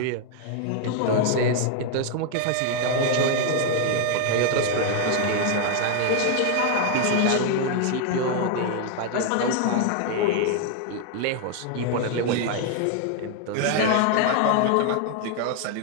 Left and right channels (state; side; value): different; both; correlation 0.00